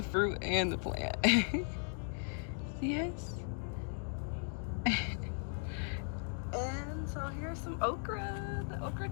fruit and the plant. Yes. And so here's some okra. The okra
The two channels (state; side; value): silent; right; 53 dB below the other